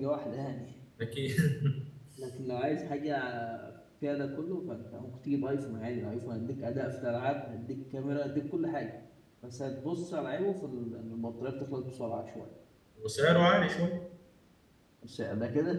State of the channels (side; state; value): both; identical; correlation 1.00